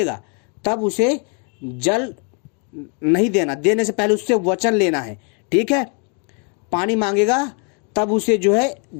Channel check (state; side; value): quieter; right; 37.7 dB